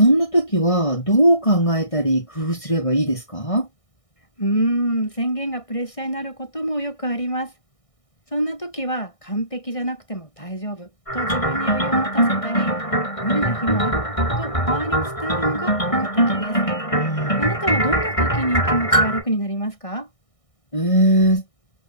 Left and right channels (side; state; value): right; late; 1.6 ms